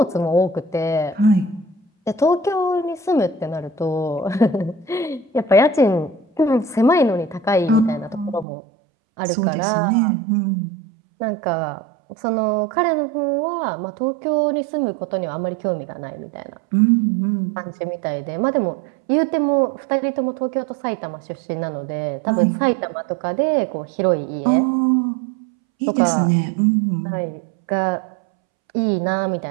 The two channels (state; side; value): drops out; left; at 8.5 s